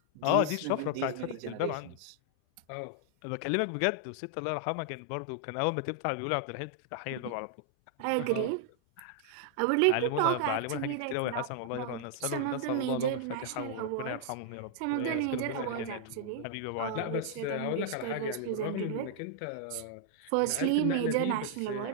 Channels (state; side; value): different; both; correlation 0.00